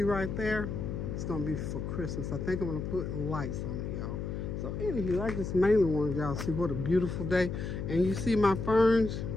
right there, it's gonna be for Christmas. I think I'm gonna put lights on it, y'all. So anywho, I just mainly wanted y'all to see what a beautiful day. And you see my ferns?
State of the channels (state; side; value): noise; left; hum, 4 dB below the sound